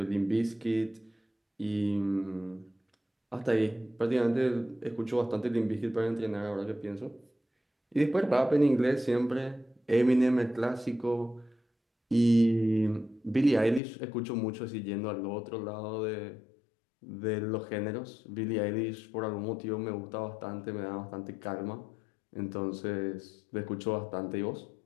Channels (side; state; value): right; drops out; at 13.8 s